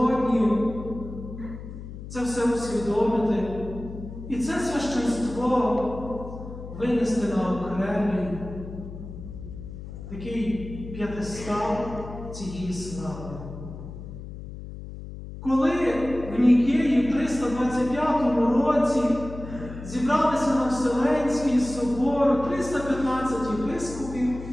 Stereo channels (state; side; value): noise; left; hum, 11 dB below the sound